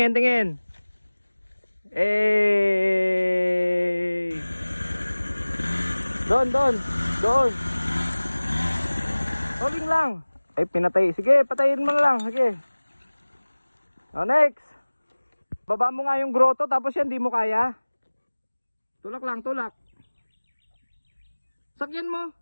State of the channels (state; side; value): inverted; both; correlation -1.00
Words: tingin. Hey! Doon, doon, doon. Rolling lang. Ay, pinatay. Sige, patayin mo na lang. Sige. O, next. Baba mo nga yung grotto, tapos yan, di mo kaya. Tulak lang, tulak. Sakyan mo.